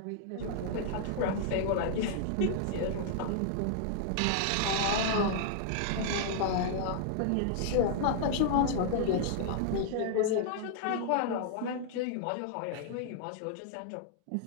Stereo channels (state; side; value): different; both; correlation -0.01